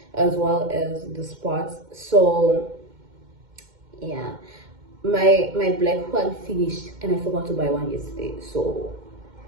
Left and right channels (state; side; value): late; left; 2.1 ms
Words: as well as the spots. So yeah, my black one finished and I forgot to buy one yesterday, so